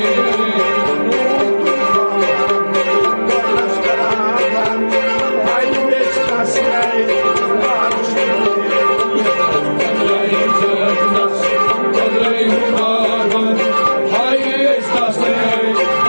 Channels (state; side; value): inverted; both; correlation -1.00